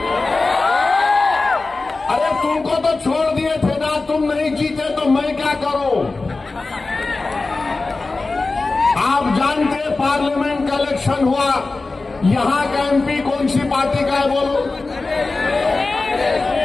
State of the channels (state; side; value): quieter; right; 3.6 dB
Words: अरे तुमको तो छोड़ दिए थे ना, तुम नहीं जीते तो मैं क्या करूं? आप जानते हैं पार्लियामेंट का इलेक्शन हुआ, यहां का एमपी कौन सी पार्टी का है? बोलो,